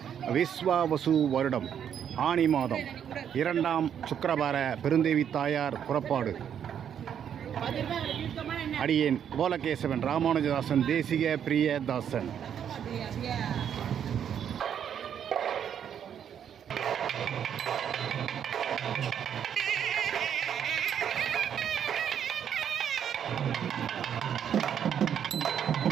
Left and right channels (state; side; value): quieter; left; 8.8 dB